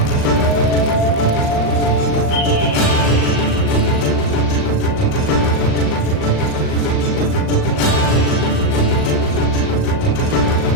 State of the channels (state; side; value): late; right; 39 ms